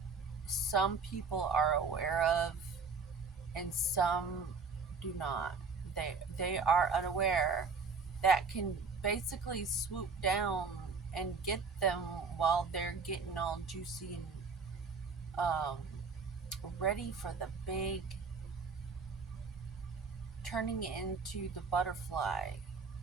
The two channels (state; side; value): quieter; left; 4.9 dB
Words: some people are aware of and some do not. They are unaware that can basically swoop down and get them while they're getting all juicy and ready for the big turning into the butterfly